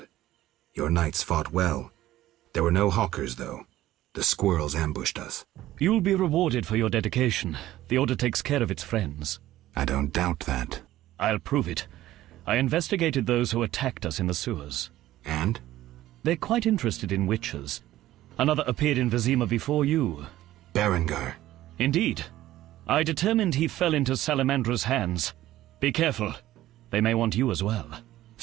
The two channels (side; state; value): left; quieter; 14.8 dB